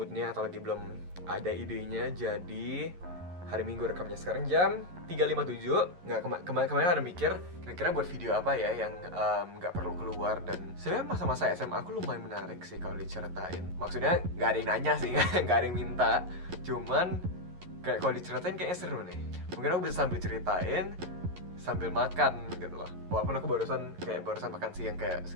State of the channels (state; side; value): late; left; 11 ms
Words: atau lagi belum ada idenya, jadi hari Minggu rekamnya sekarang jam 3.57. Nggak kemarin ada mikir kira-kira buat video apa ya yang nggak perlu keluar, dan sebenarnya masa-masa SMA aku lumayan menarik sih kalau diceritain. Maksudnya nggak ada yang nanya sih, nggak ada yang minta, cuman kayak kalau diceritain kayaknya seru nih. Mungkin aku bisa sambil ceritain sambil makan gitu loh. Walaupun aku barusan makan siang kayak